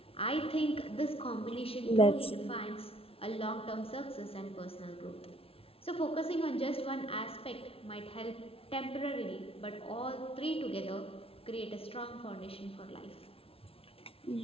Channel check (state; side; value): late; right; 0.27 ms